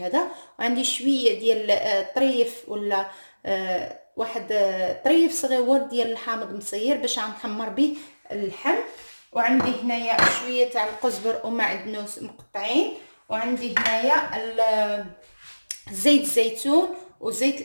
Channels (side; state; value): both; inverted; correlation -1.00